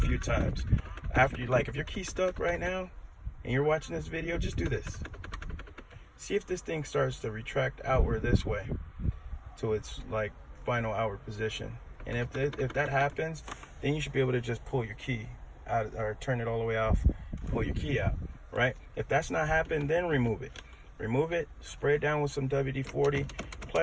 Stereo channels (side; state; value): both; identical; correlation 1.00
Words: times. After if your key's stuck right now and you're watching this video, just do this. See if this thing starts to retract outward this way to its final outward position. And if that happens, then you should be able to just pull your key out, or turn it all the way off, pull your key out, right? If that's not happening, then remove it. Remove it, spray it down with some WD-40,